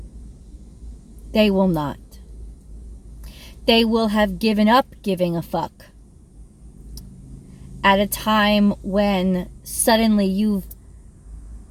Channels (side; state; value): both; identical; correlation 1.00